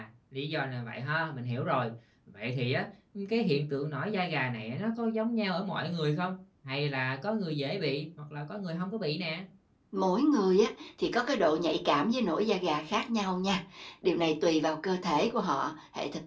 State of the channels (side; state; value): both; identical; correlation 1.00